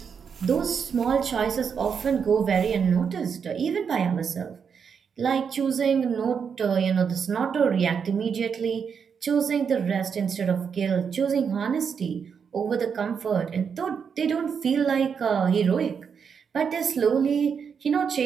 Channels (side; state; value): left; quieter; 6.6 dB